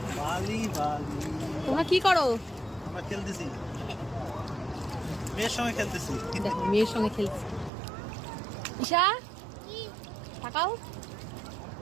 তোমরা কি করো? আমরা খেলতেছি, মেয়ের সঙ্গে খেলতেছি। দেখো মেয়ের সঙ্গে খেলছি। ঈশা তাকাও,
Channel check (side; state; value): left; drops out; at 7.7 s